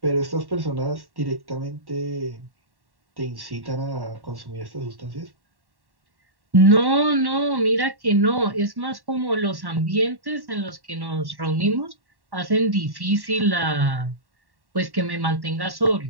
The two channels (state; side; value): late; left; 1.1 ms